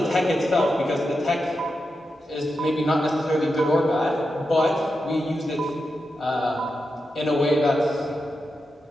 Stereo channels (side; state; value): both; normal; correlation 0.88